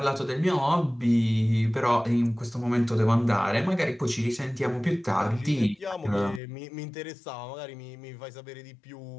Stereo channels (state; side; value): drops out; right; at 6.4 s